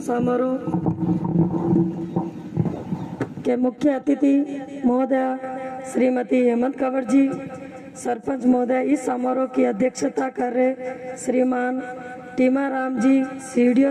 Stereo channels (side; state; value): both; identical; correlation 1.00